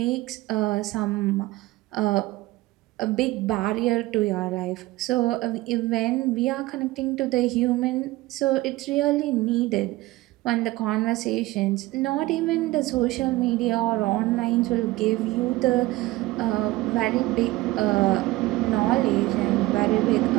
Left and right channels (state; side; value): quieter; left; 18.9 dB